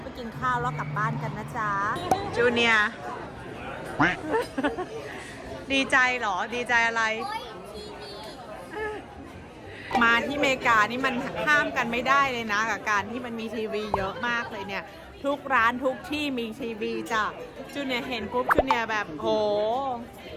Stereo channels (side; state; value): both; identical; correlation 1.00